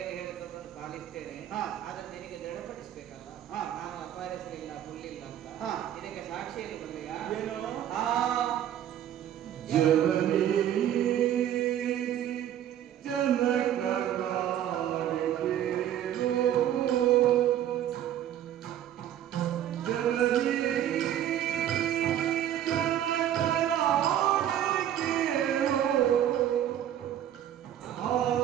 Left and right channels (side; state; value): left; quieter; 11.0 dB